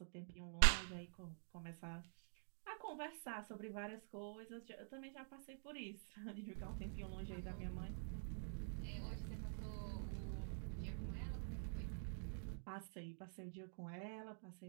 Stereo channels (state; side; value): silent; left; digital silence